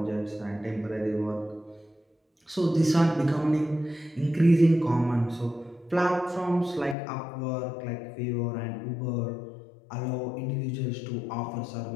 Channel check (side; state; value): right; drops out; at 7.0 s